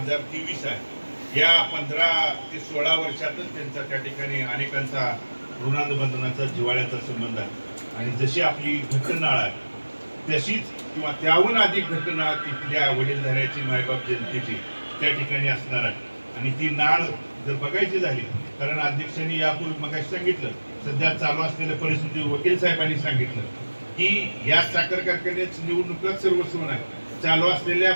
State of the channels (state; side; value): inverted; both; correlation -1.00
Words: आहे. या 15 ते 16 वर्षातच त्यांचा त्या ठिकाणी अनेकांचा ऋणानुबंधनाचा, जिव्हाळ्याचा संबंध आहे. आणि जशी आपली घटनाळ आहे तशीच किंवा त्याहून अधिक घटना तिथल्या वडीलधाऱ्याची, मायबाप जनतेची त्या ठिकाणी असणार आहे. आणि ती नाळ जर बघायची झाली, कारण अध्यक्षांनी यापूर्वी मग सांगितलं सध्या चालू असलेल्या परिस्थिती वकील साहेबांनी सांगितलं की या साखर कारखान्याची निवडणुका सर्वस्व नाही. चालू असलेल्या